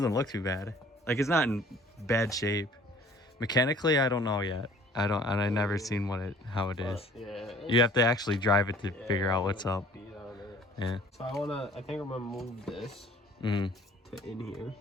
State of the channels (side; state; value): both; normal; correlation 0.52